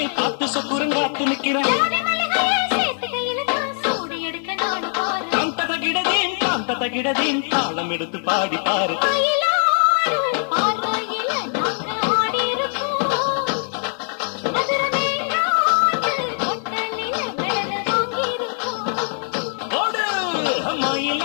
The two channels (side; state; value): right; silent; 64 dB below the other